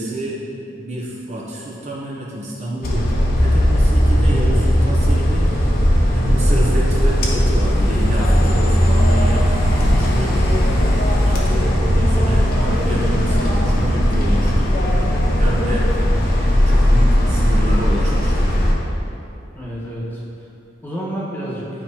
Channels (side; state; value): both; normal; correlation 0.91